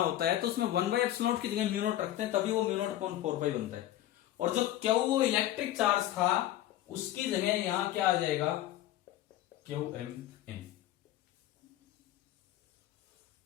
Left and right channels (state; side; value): quieter; right; 13.7 dB